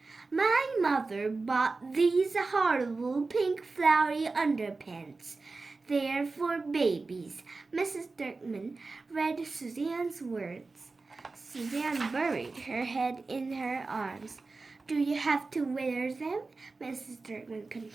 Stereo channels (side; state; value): left; quieter; 3.8 dB